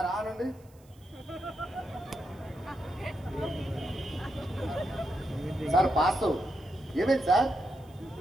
ఆనండి. Sir pass. ఏమైంది సార్?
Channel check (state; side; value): noise; right; hiss, 30 dB below the sound